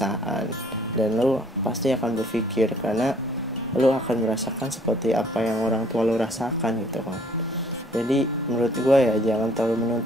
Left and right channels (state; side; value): normal; both; correlation 0.59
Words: dan lu pasti akan berpikir karena lu akan merasakan seperti apa yang orang tua lu rasakan gitu kan. Jadi menurut gue ya jangan terlalu